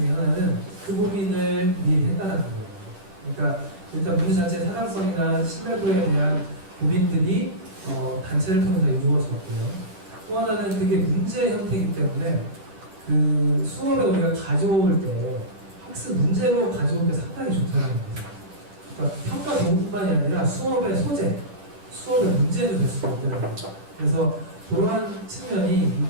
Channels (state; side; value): late; left; 10 ms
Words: 하나는 그 고민을 미리 했다는 거예요. 그러니까 일단 문제 자체의 타당성이나 신뢰도에 대한 고민들이 단체를 통해서 이루어졌고요. 또 하나는 그게 문제 형태이기 때문에 그 수업에 우리가 가져올 때 학습 문제로 가져올 때 상당히 좋다는 거예요. 그러니까 평가 도구뿐만이 아니라 수업의 소재, 수업의 문제도 될 수가 있다는 거죠. 그래서 그러한 측면이